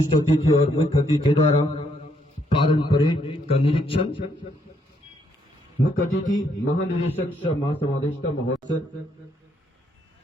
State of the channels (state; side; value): normal; both; correlation 0.73